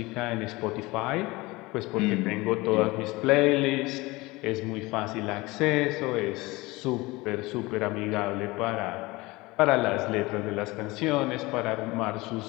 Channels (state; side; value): quieter; right; 21.9 dB